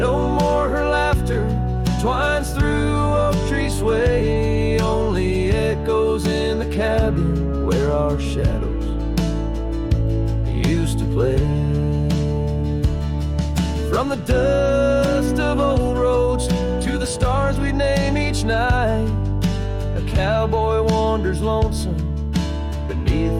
more her laughter twines through cabin where our shadows used to play. From the dust of old roads to the stars we'd name each night, a cowboy wanders lonesome beneath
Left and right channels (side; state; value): both; identical; correlation 1.00